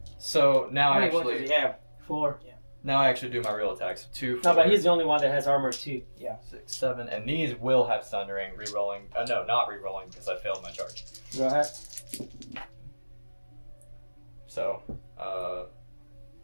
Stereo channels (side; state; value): both; inverted; correlation -1.00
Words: So now How I many ones does actually he have? 4. do my real attacks. 2, 4, No, but he's the only one that has armor 2. 6, 7, and these will have Sundering re-rolling. No, not re-rolling because I failed my charge. Go ahead. So,